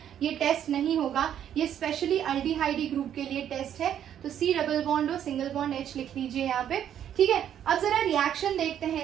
ये टेस्ट नहीं होगा, ये स्पेशली अल्डिहाइडी ग्रुप के लिए टेस्ट है। तो C double bond O single bond H लिख लीजिए यहाँ पे, ठीक है। अब जरा रिएक्शन देखते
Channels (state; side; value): quieter; left; 9.9 dB